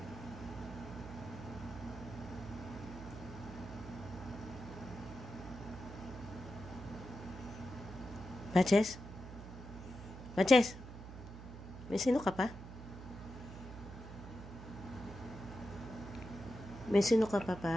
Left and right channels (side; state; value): right; noise; hum, 12 dB below the sound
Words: Patches? Patches? May sino ka pa? May sino ka pa,